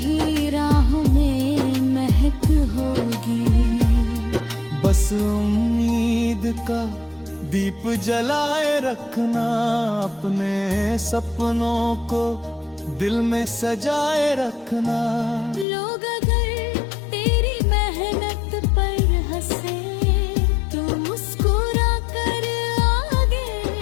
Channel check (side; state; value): right; drops out; at 15.7 s